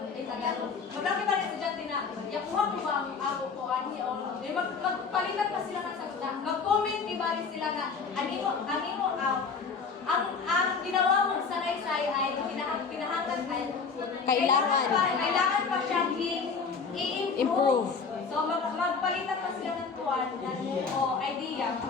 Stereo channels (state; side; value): quieter; right; 5.2 dB